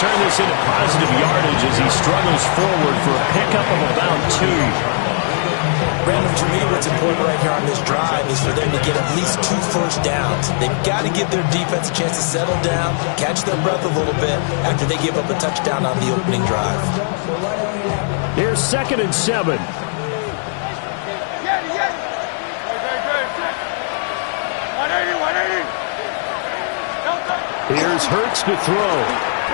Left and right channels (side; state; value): right; silent; digital silence